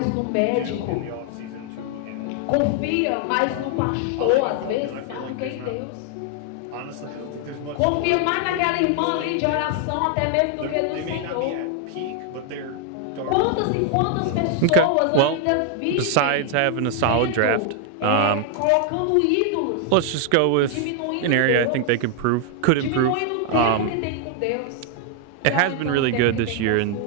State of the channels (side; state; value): both; different; correlation 0.00